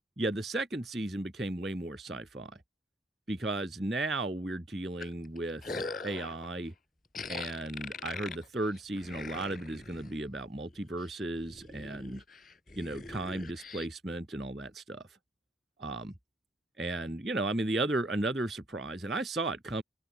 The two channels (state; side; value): normal; both; correlation 0.66